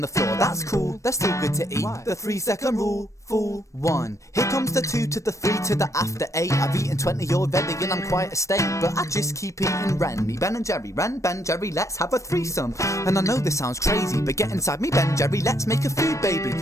the floor, that's cool, they're still good to eat. Why? The 3-second rule, fool 1. Here comes the 2 to the 3 to the after 8. I've eaten 20 already and I'm quite a steak, but I just keep eating Ren. Me Ben and Jerry, Ren, Ben, Jerry, let's have a threesome. And I know this sounds crazy, but get inside me Ben, Jerry, let's make a food baby.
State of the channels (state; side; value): late; right; 0.15 ms